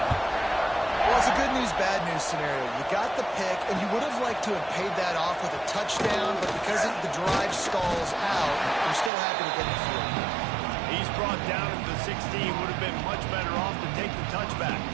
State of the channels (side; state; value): left; drops out; at 9.1 s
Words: Well, it's a good news, bad news scenario. You got the pick, and you would have liked to have paid that off with a touchdown, but because the drive stalls out, you're still happy to get the field. He's brought down at the 16. Would have been much better off to take the touchback.